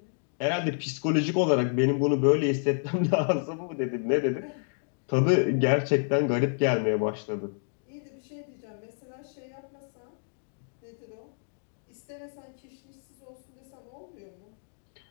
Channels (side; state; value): right; silent; digital silence